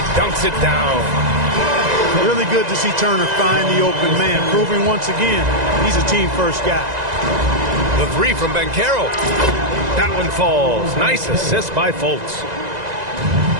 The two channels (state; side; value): late; left; 2.0 ms